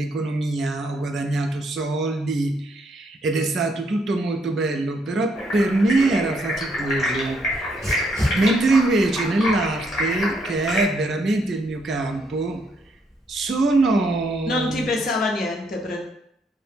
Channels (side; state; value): both; normal; correlation 0.73